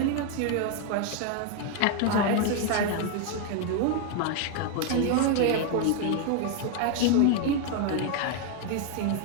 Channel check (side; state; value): both; different; correlation 0.01